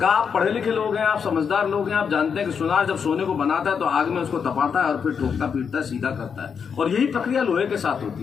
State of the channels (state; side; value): quieter; right; 6.6 dB